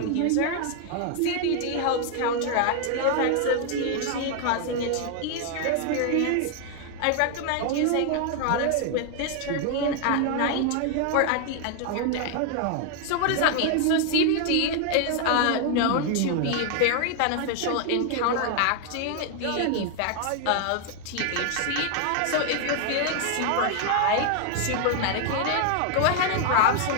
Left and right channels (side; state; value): both; different; correlation 0.00